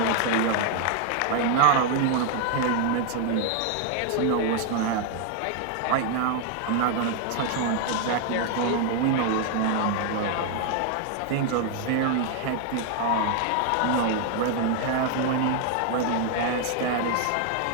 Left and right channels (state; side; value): different; both; correlation 0.00